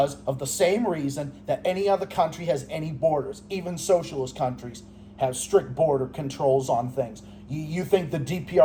of the same reason that any other country has any borders. Even socialist countries have strict border controls on things. You think the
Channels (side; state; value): both; identical; correlation 1.00